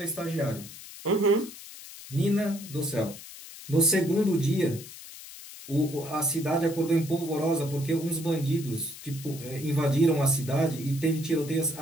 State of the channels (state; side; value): noise; left; hiss, 15 dB below the sound